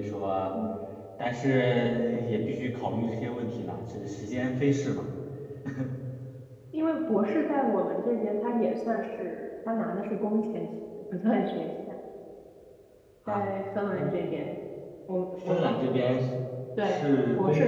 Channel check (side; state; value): both; identical; correlation 1.00